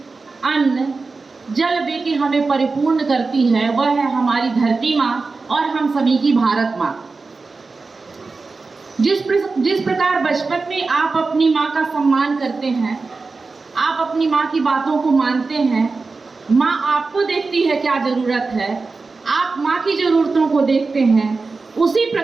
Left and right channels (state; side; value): quieter; left; 4.0 dB